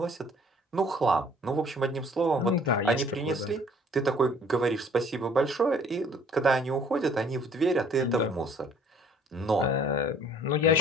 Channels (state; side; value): normal; both; correlation 0.56